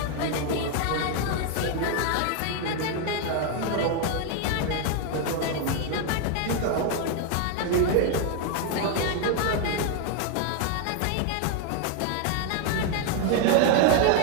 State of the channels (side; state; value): both; different; correlation 0.01